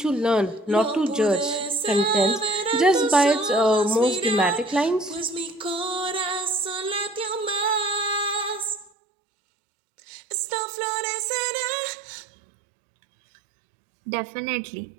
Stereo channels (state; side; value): drops out; left; at 8.9 s